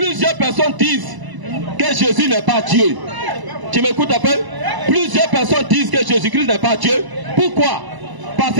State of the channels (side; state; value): left; late; 1.0 ms